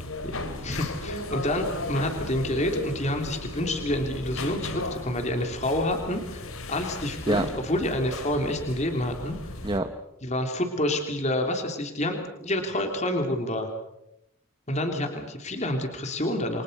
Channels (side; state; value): both; normal; correlation 0.39